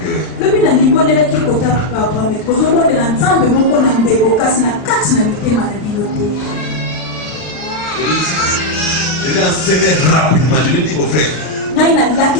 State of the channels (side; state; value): right; late; 39 ms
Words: Je vais enseigner rapidement, je lui dis au frère.